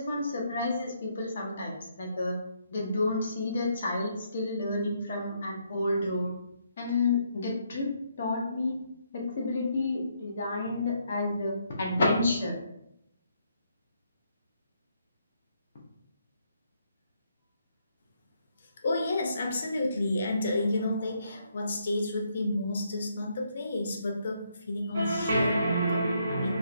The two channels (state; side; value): inverted; both; correlation -0.74